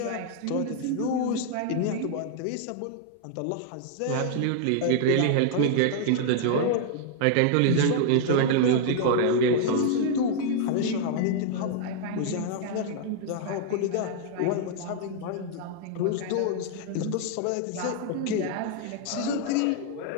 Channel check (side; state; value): both; different; correlation 0.00